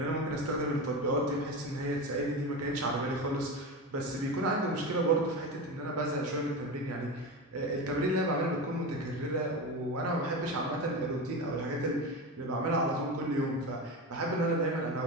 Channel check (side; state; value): both; normal; correlation 0.23